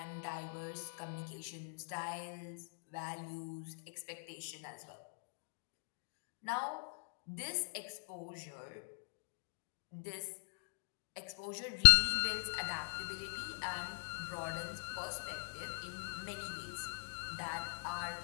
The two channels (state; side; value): silent; right; digital silence